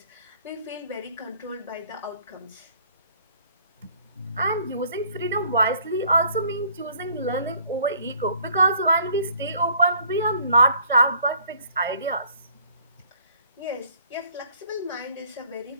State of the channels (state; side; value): inverted; both; correlation -0.59